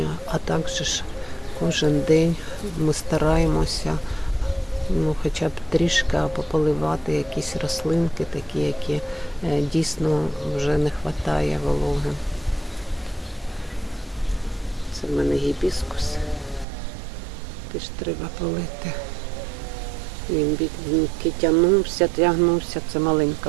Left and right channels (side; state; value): left; drops out; at 16.7 s